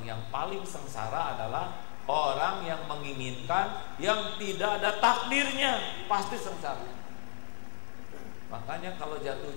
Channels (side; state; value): right; silent; 55 dB below the other